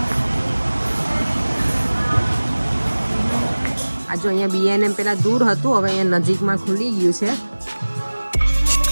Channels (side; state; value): both; inverted; correlation -1.00